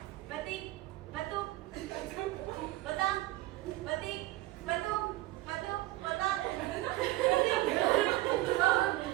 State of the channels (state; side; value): quieter; left; 17.7 dB